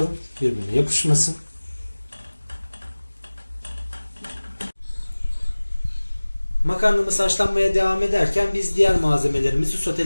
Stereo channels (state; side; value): inverted; both; correlation -1.00